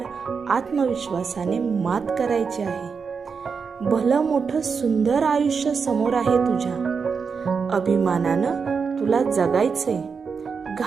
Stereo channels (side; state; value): left; quieter; 5.6 dB